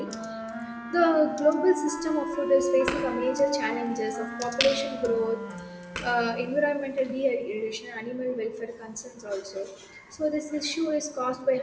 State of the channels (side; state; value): both; identical; correlation 1.00